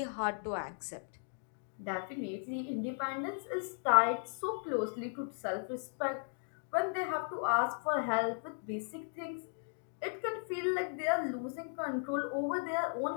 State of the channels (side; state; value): right; silent; 53 dB below the other